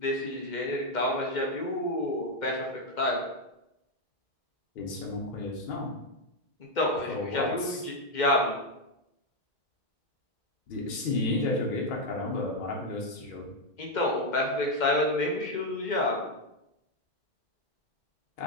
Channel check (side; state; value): right; late; 2.4 ms